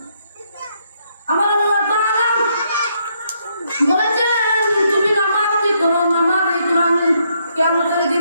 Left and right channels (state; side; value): inverted; both; correlation -0.74